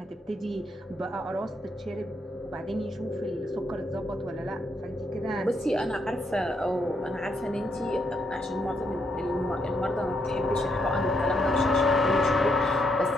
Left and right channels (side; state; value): both; normal; correlation 0.77